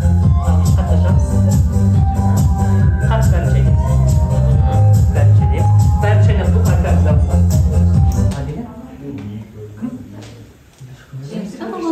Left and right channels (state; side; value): identical; both; correlation 1.00